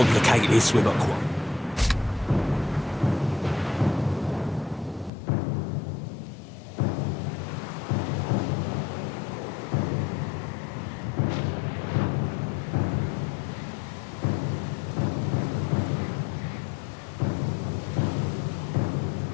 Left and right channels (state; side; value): drops out; right; at 5.1 s